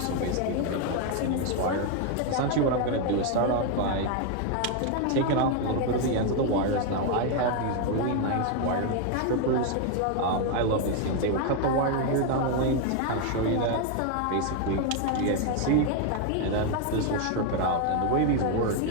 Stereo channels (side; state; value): both; different; correlation 0.01